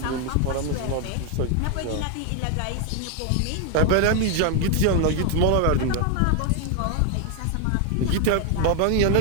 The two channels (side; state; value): both; different; correlation 0.01